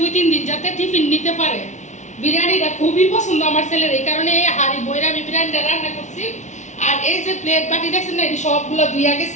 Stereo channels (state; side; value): late; right; 0.34 ms